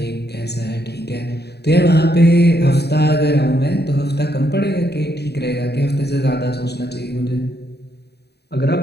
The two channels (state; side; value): late; right; 0.48 ms